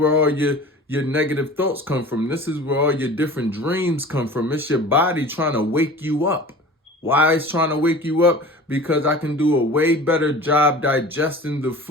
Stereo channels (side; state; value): both; normal; correlation 0.40